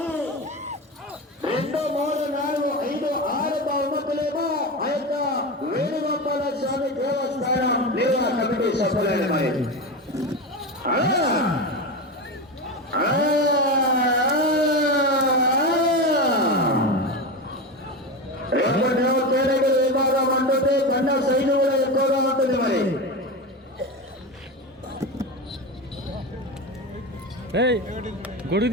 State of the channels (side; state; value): both; normal; correlation 0.20